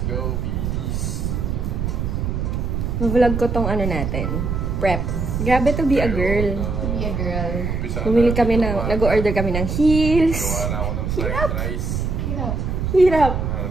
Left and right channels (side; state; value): right; noise; rumble, 1 dB below the sound